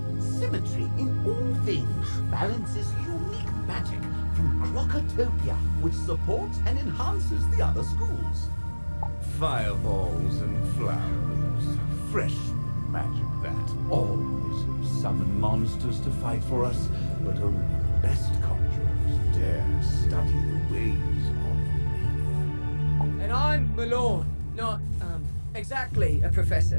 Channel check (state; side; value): inverted; both; correlation -1.00